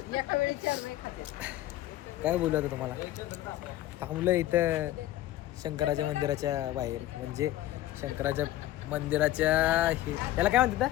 वेळी 4 नाही खाते. काय बोलू आता तुम्हाला. थांबलं इथं शंकराच्या मंदिराच्या बाहेर म्हणजे शंकराच्या मंदिराच्या त्याला काय म्हणतात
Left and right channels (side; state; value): right; quieter; 14.8 dB